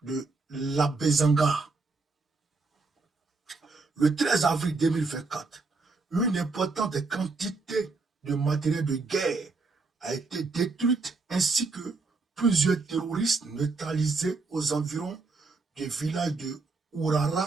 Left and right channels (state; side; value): quieter; left; 3.9 dB